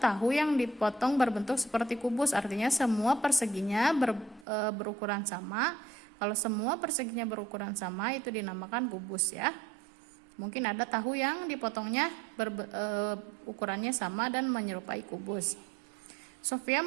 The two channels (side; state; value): left; drops out; at 4.5 s